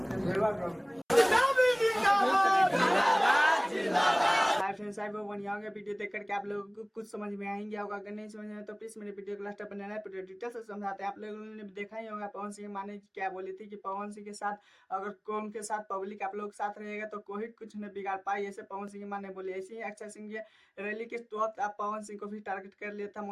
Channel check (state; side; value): identical; both; correlation 1.00